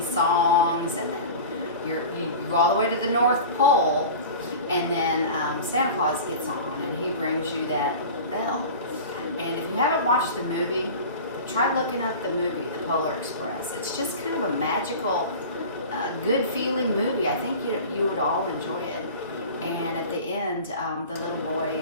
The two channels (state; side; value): inverted; both; correlation -0.35